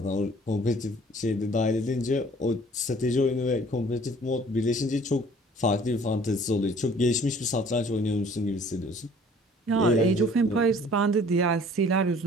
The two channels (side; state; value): both; normal; correlation 0.53